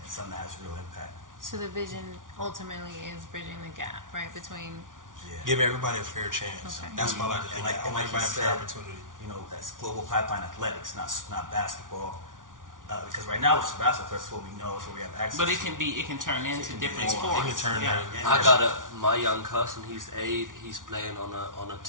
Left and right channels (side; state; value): left; late; 0.88 ms